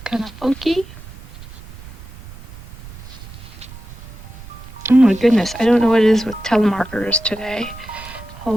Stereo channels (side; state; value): right; noise; rumble, 16 dB below the sound